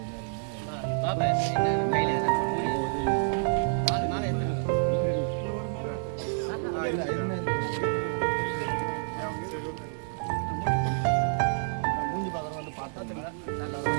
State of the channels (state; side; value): silent; left; digital silence